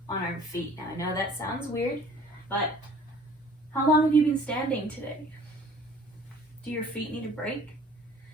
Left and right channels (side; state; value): both; normal; correlation 0.51